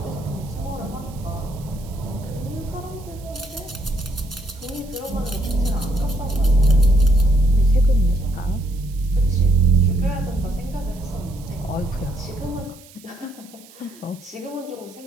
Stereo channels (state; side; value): noise; right; hiss, 23 dB below the sound